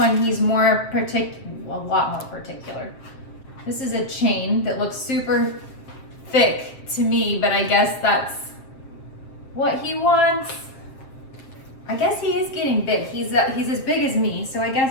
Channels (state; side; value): late; right; 7.5 ms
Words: he's a lot more particular. This is a chain that looks super thick to me, but I guess that's what he wants. I guess he is getting big. He's as big as me, so I